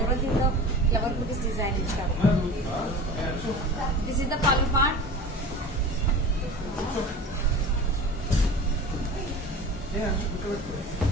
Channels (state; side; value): normal; both; correlation 0.36